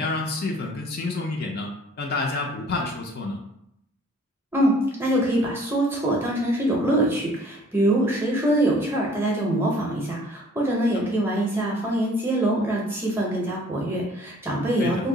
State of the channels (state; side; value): normal; both; correlation 0.54